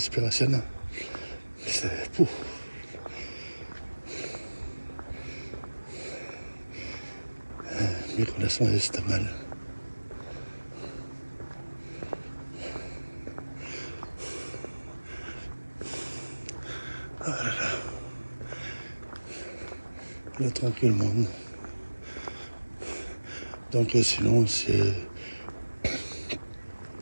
C'est pouf. Micro-leçon c'est mal. Ah là là. Là, tranquillement. Donc sinon, c'est...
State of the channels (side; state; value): both; inverted; correlation -1.00